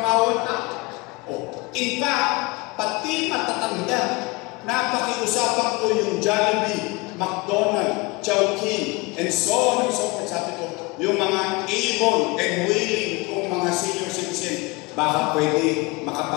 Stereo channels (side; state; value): right; quieter; 24.8 dB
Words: ang tao. O, in fact, pati matatanda, napakiusapan ko yung Jollibee, McDonald's, Chowking, and so on and so forth. Sabi ko, yung mga able and willing kong mga senior citizen, baka pwede